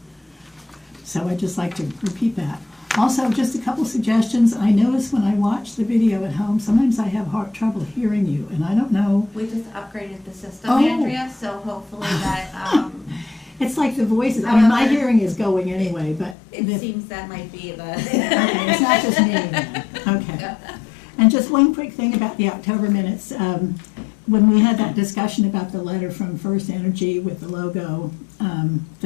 So I'd just like to repeat that. Also, just a couple suggestions. I notice when I watch the video at home, sometimes I have trouble hearing you, and I don't know. We just upgraded the system, Oh. Andrea, so hopefully that, It's like the voices. I mean, my hearing is going anyway, but it seems that might be the. Okay, it's not just me then. Okay. And just one quick thing about the October minutes. When we had that discussion about the letter from First Energy with the logo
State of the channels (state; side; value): drops out; right; at 16.4 s